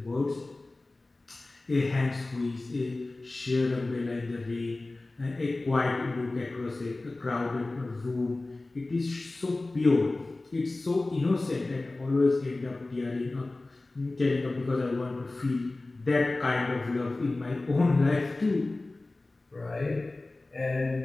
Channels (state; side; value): quieter; right; 3.1 dB